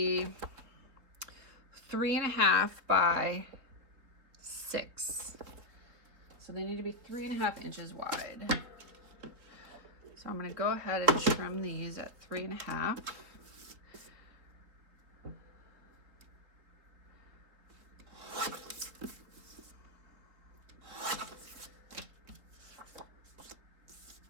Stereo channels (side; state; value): left; late; 3.5 ms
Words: 3.5 by 6. So they need to be 3.5 inches wide. So I'm going to go ahead and trim these at 3.5.